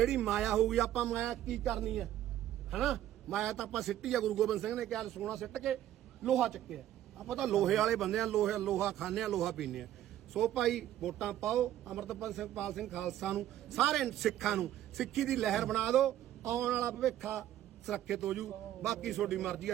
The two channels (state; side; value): quieter; left; 12.4 dB